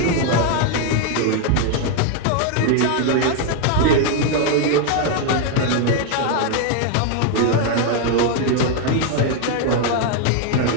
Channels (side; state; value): both; different; correlation 0.01